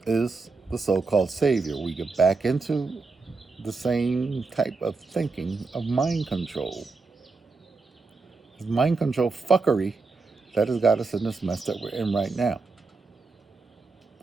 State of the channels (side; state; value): left; quieter; 4.0 dB